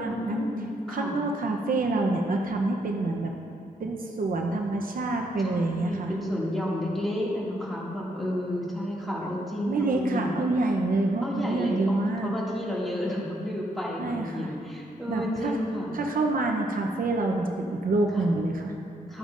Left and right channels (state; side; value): normal; both; correlation 0.74